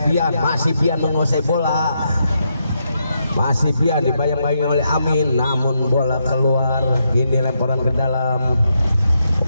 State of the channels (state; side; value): inverted; both; correlation -0.81